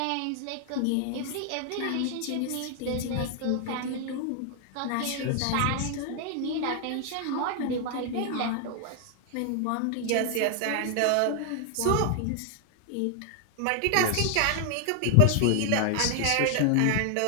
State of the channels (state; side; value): different; both; correlation 0.00